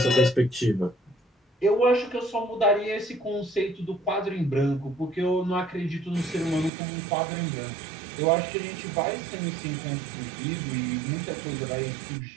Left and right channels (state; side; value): drops out; left; at 6.7 s